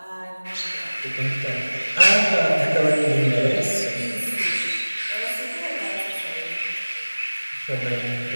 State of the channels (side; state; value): both; inverted; correlation -1.00